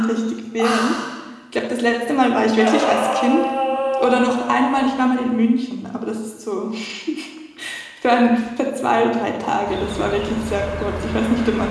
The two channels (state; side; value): identical; both; correlation 1.00